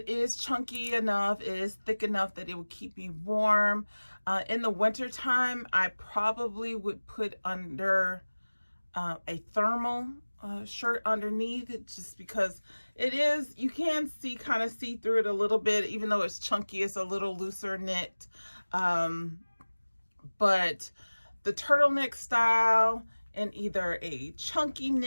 is chunky enough, it is thick enough that it would keep me warm. In the winter time, I probably would put under a thermal shirt underneath it, just because it is, you can kind of see through it a little bit, even though it's chunky. It's a little looser knit. But the turtleneck style in either a chunky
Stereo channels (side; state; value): both; inverted; correlation -1.00